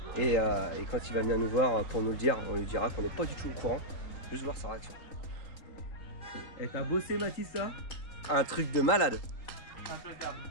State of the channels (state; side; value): late; right; 3.8 ms